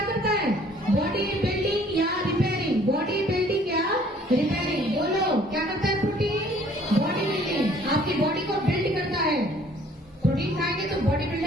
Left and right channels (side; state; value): both; normal; correlation 0.58